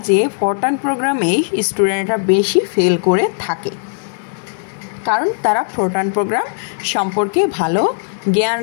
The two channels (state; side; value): silent; right; digital silence